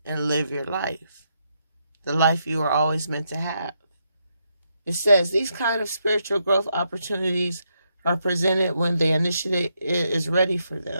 and live your life, the life you were always meant to have. It says these kind of spiritual growth opportunities are presented when the initiate is ready for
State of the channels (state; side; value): inverted; both; correlation -0.79